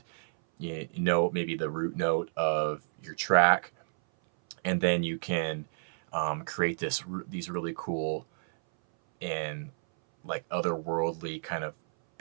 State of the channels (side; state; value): left; silent; 58 dB below the other